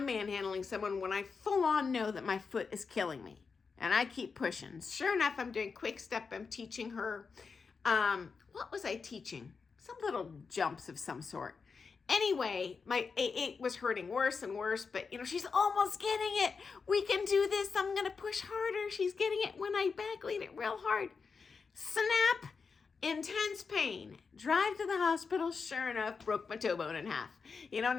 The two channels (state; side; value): quieter; right; 5.1 dB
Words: manhandling someone when I full on know that my foot is killing me. And I keep pushing. Sure enough, I'm doing quickstep. I'm teaching her. What was I teaching? Some little jumps of some sort. Anyway, it was hurting worse and worse, but she's almost getting it. We can do this. I'm going to push harder. She's getting it when I back lead it real hard. Snap, intense pain. Drive to the hospital. Sure enough, broke my toe bone in half. And they're